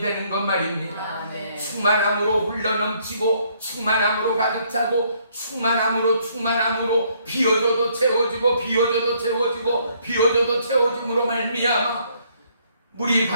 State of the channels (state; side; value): inverted; both; correlation -0.67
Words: 것 말입니다. 충만함으로 흘러넘치고 충만함으로 가득 차고 충만함으로 비워져도 채워지고 비워져도 채워지고 비워져도 채워짐으로 말미암아 물이